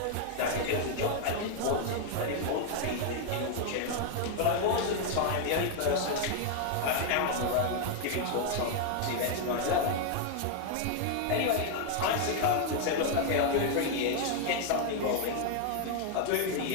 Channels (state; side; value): different; both; correlation 0.00